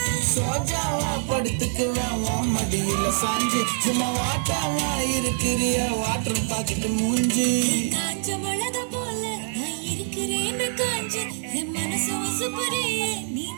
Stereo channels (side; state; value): left; silent; 62 dB below the other